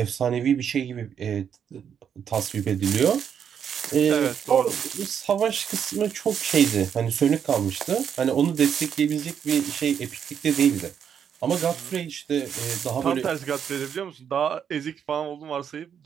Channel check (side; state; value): left; quieter; 8.0 dB